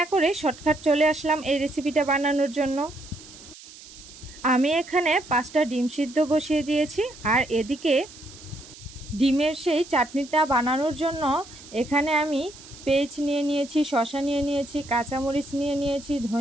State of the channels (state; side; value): noise; right; hiss, 18 dB below the sound